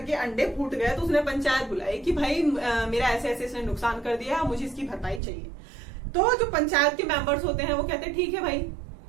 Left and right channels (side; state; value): left; drops out; at 5.2 s